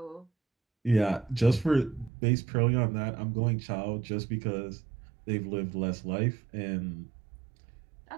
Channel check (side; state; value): left; drops out; at 2.1 s